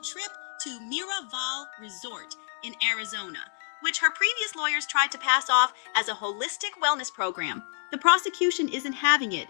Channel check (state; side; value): silent; right; digital silence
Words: to Miraval Resort in Arizona, which her previous lawyers tried to pass off as a holistic wellness program. The prosecution isn't having it,